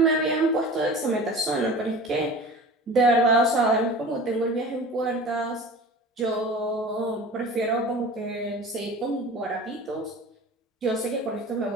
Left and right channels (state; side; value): normal; both; correlation 0.38